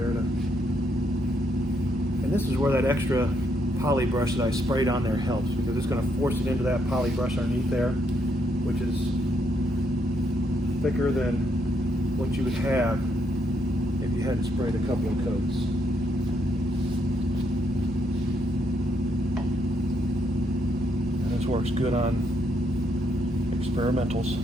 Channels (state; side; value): normal; both; correlation 0.76